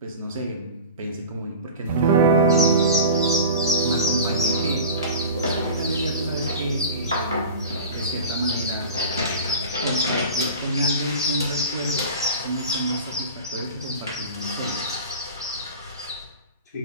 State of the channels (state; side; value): inverted; both; correlation -0.35